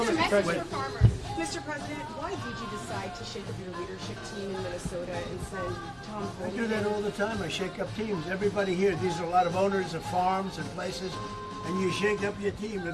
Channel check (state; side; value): identical; both; correlation 1.00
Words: that the Message for president farmers. Mr. President, why did you decide to shake up your leadership team in Minnesota and send Tom I do Homan? that all the time. I shake up teams. Everybody here, these are a lot of owners of farms and places, and you shake up your team.